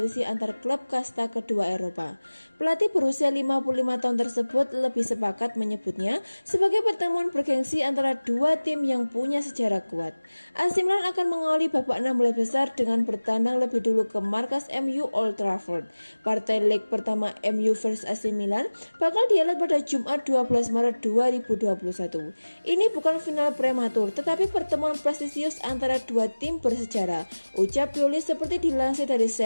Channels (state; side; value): inverted; both; correlation -1.00